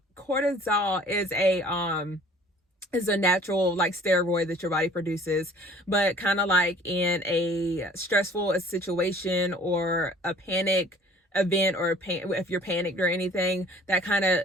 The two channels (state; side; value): normal; both; correlation 0.51